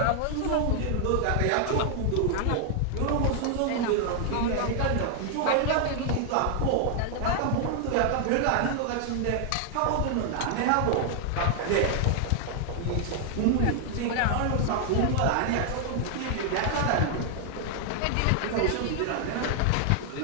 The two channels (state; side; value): different; both; correlation 0.00